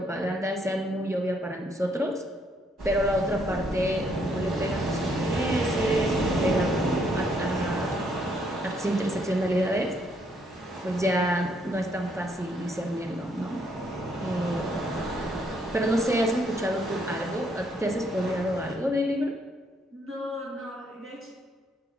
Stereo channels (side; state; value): both; normal; correlation 0.70